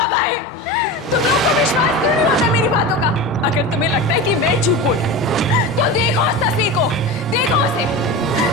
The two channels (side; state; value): both; normal; correlation 0.27